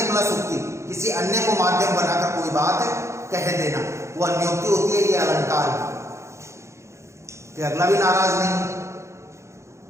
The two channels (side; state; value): left; late; 0.14 ms